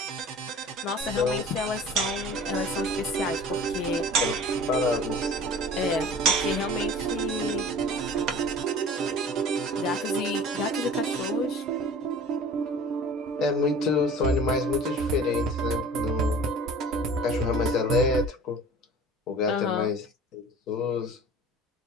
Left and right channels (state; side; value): normal; both; correlation 0.43